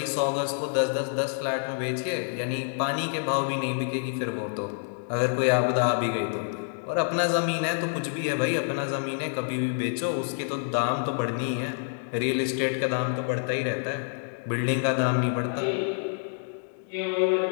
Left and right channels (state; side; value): silent; right; digital silence